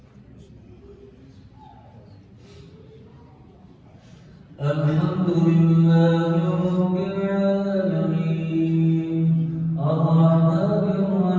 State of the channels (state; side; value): identical; both; correlation 1.00